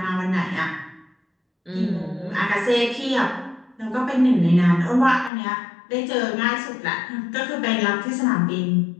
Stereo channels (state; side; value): drops out; right; at 5.3 s